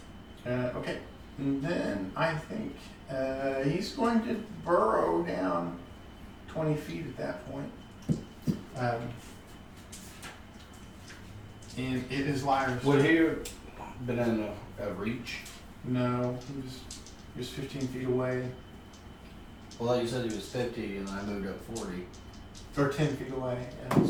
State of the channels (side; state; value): both; identical; correlation 1.00